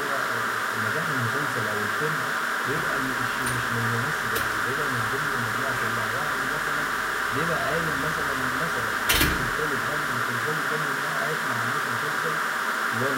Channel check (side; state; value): both; identical; correlation 1.00